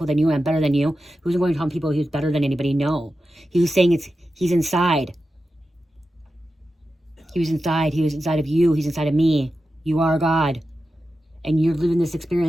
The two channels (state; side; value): normal; both; correlation 0.91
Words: than you. I'm better than you. He wasn't going to tell people he was better than anybody. No. He was saying he's inside. He was inside. He was inside of you. He's inside of me. You are God. And you're living this